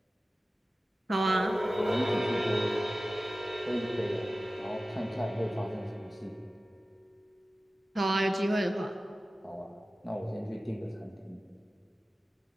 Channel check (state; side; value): normal; both; correlation 0.96